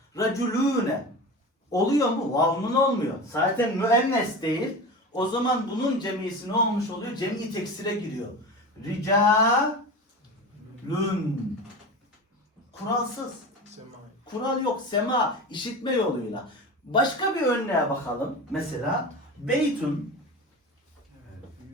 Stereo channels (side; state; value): both; normal; correlation 0.29